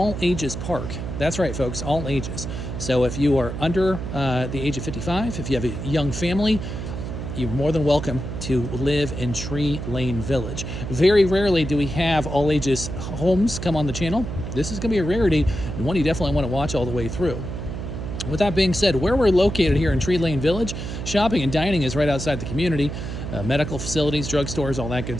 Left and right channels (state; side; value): noise; right; hum, 6 dB below the sound